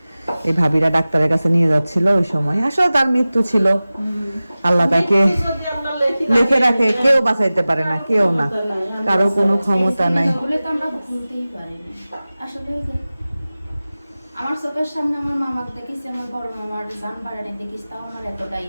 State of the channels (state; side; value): inverted; both; correlation -0.97